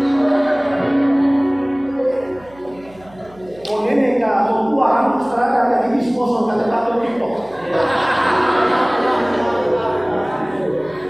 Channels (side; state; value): right; noise; hum, 25 dB below the sound